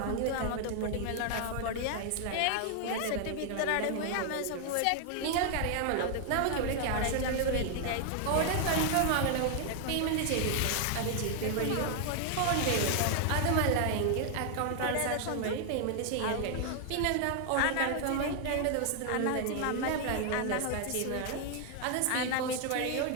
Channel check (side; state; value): both; different; correlation 0.00